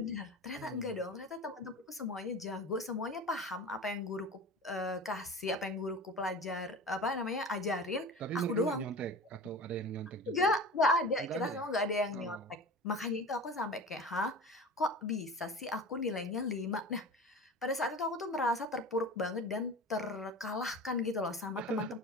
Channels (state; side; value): normal; both; correlation 0.34